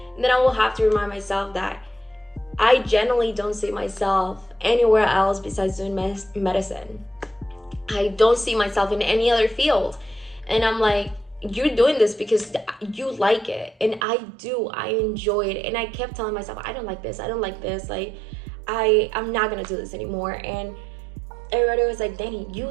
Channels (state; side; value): drops out; left; at 14.1 s